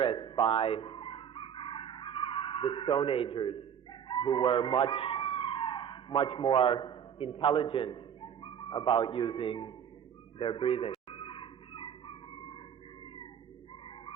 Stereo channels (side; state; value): left; quieter; 8.4 dB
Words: by the Stone Agers, who were much more intelligent about using their breathing.